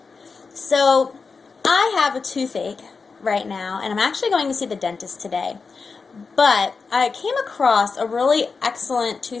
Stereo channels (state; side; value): quieter; right; 4.7 dB